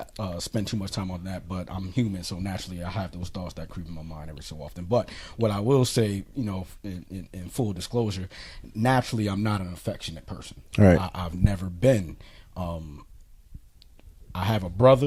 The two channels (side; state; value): both; identical; correlation 1.00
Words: spend too much time on that, but I'm human, so naturally I have those thoughts that creep in my mind every so often. But what I will say, you know, in full disclosure, naturally I'm not an affectionate person. Right. I've never been. I have a